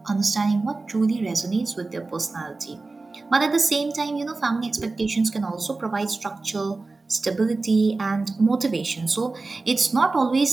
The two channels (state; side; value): quieter; left; 3.6 dB